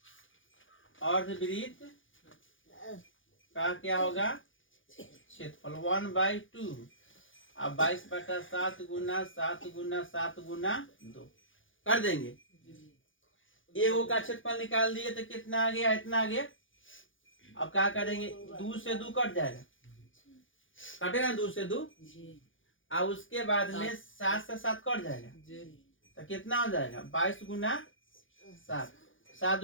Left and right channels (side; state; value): right; late; 0.57 ms